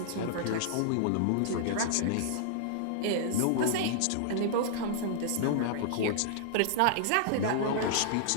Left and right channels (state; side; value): different; both; correlation -0.01